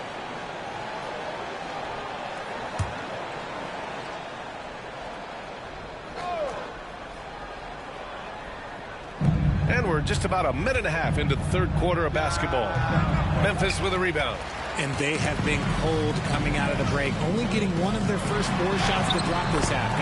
And we're just about a minute and a half into the third quarter of basketball. Memphis with a rebound. And they have been cold coming out of the break, only getting one of their first 4 shots to drop this half.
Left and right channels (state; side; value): identical; both; correlation 1.00